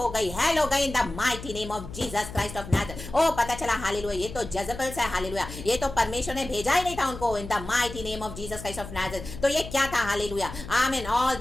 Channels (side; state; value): left; noise; hum, 12 dB below the sound